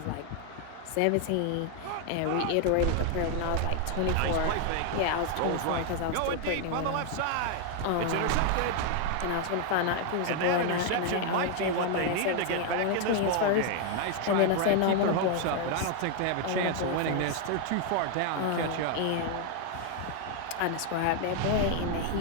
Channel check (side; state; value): both; different; correlation 0.00